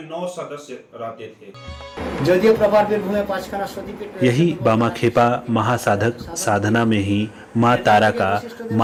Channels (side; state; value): both; identical; correlation 1.00